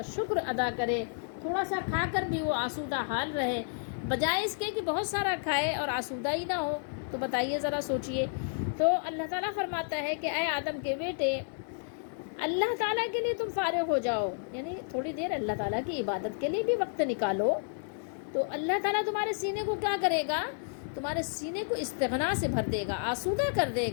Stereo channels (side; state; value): right; silent; 57 dB below the other